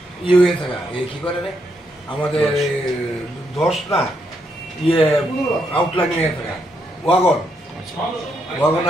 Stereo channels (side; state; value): both; normal; correlation 0.78